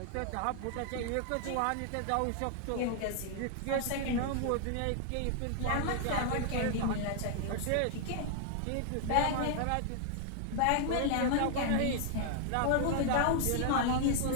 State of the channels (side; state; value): both; different; correlation 0.00